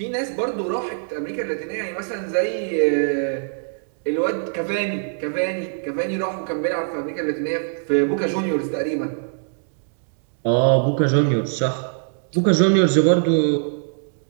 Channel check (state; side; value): silent; left; digital silence